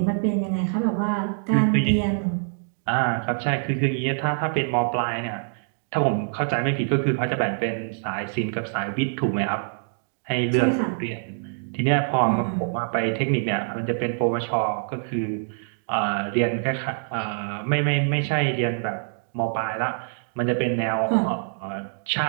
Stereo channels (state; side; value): silent; left; digital silence